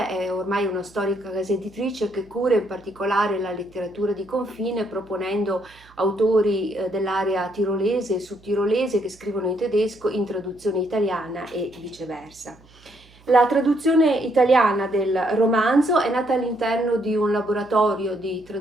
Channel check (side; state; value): right; noise; hum, 27 dB below the sound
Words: è ormai una storica casa editrice che cura in particolare la letteratura di confine, proponendo autori dell'area tirolese e sudtirolese che scrivono in tedesco in traduzione italiana e viceversa. La traduzione italiana del romanzo è nata all'interno di un laboratorio di